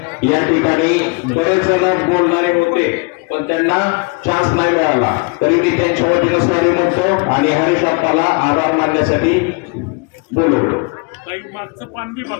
या ठिकाणी बरेच जण बोलणारे होते पण त्यांना चान्स नाही मिळाला. तरी मी त्यांच्या वतीनं सॉरी म्हणतो आणि हरीश अप्पाला आभार मानण्यासाठी बोलवतो. मागचं पान बी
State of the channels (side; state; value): right; quieter; 30.8 dB